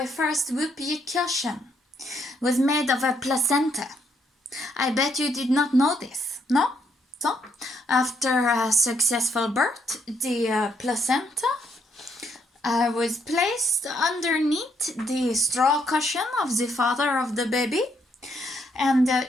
first whoopee cushion was made of a placenta. I bet you did not know this, no? So, after a successful birth, the placenta I was placed underneath the straw cushion of the father of the baby, and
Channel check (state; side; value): normal; both; correlation 0.73